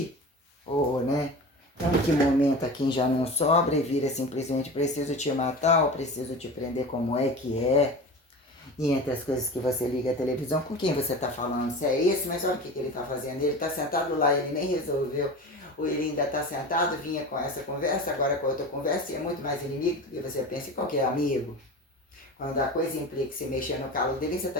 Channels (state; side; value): normal; both; correlation 0.32